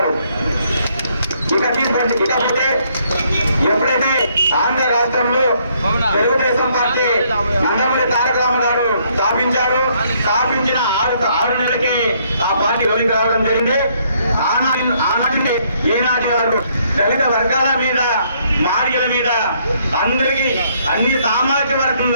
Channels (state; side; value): inverted; both; correlation -0.69